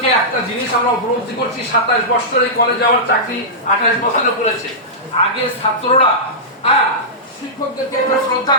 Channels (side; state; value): both; normal; correlation -0.14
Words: একটা জিনিস আমরা উপলব্ধি করছি, 27 বছর এই কলেজে আমার চাকরি, 28 বছরে করেছে। আগে ছাত্ররা শিক্ষকদেরকে একটা শ্রদ্ধা